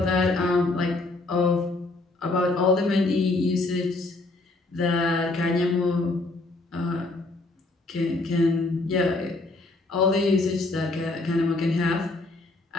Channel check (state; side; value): quieter; right; 3.1 dB